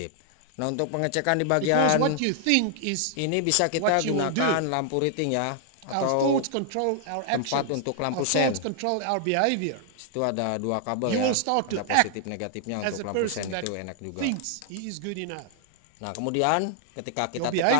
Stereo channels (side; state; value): both; different; correlation -0.01